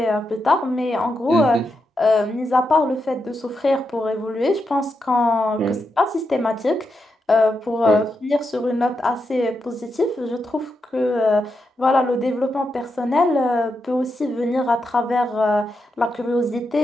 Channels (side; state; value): both; normal; correlation 0.85